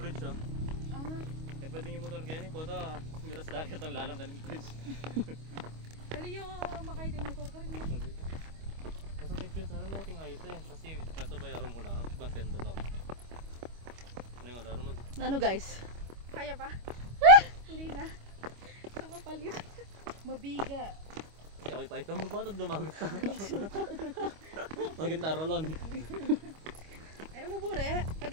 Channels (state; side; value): late; left; 25 ms